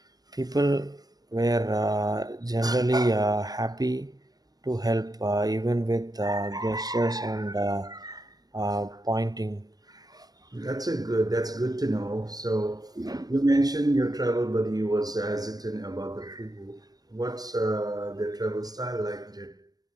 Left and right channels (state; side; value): late; left; 0.19 ms